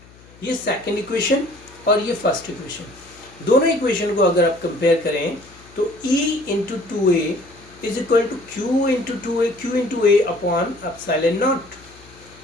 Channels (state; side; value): noise; left; hum, 24 dB below the sound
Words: ये सेकंड इक्वेशन और ये फर्स्ट इक्वेशन, दोनों इक्वेशन को अगर आप कंपेयर करें तो E into two A is equal to Q into A upon epsilon not.